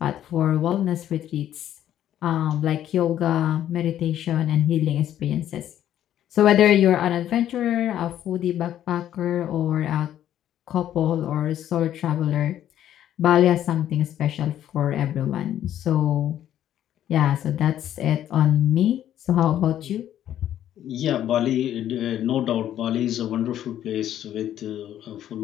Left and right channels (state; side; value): quieter; right; 11.4 dB